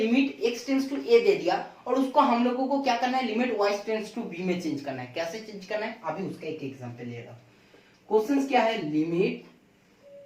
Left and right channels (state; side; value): identical; both; correlation 1.00